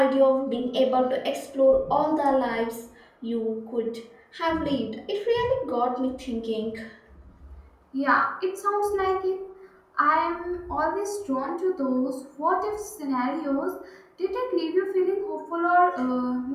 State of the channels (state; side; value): identical; both; correlation 1.00